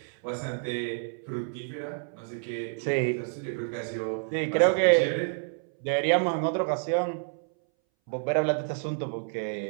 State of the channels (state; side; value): silent; left; 59 dB below the other